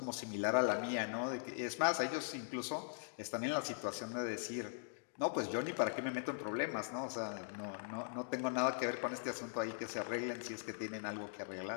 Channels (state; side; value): silent; right; digital silence